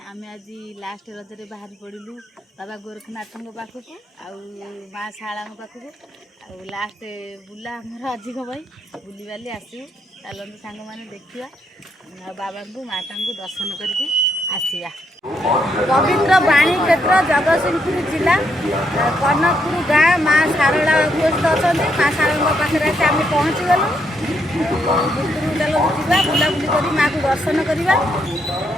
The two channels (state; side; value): normal; both; correlation 0.76